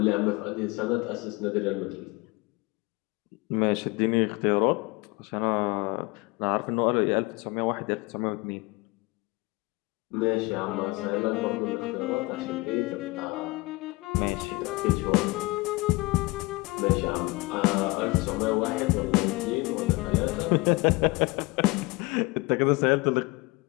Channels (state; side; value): quieter; right; 24.6 dB